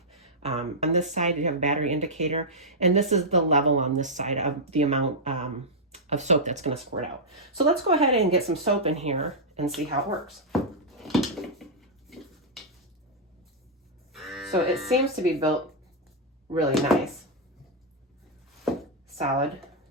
On this side, you have a battery indicator, and this is the level on this side of the amount of soap that's gonna squirt out. So let's go ahead and get some soap in here and see how it works. So it seems to be built really nice, solid.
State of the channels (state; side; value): normal; both; correlation -0.07